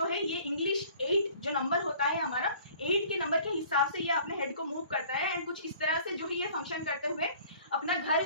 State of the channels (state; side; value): inverted; both; correlation -0.51